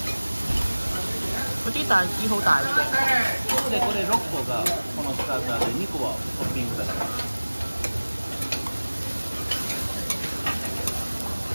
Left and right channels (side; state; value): both; inverted; correlation -1.00